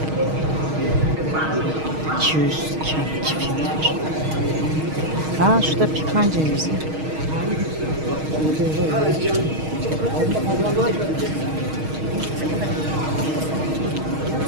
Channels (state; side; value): late; left; 6.4 ms